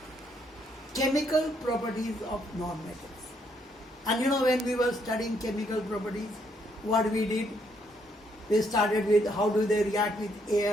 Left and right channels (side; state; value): both; normal; correlation 0.72